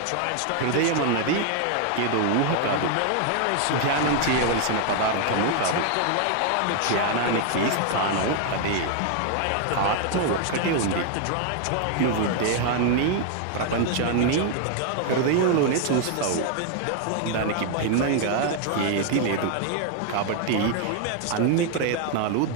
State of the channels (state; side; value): different; both; correlation 0.00